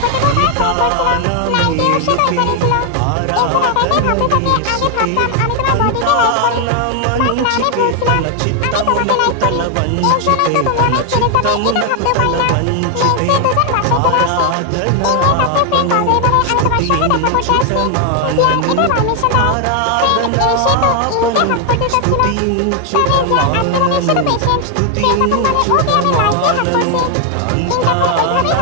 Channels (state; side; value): different; both; correlation 0.00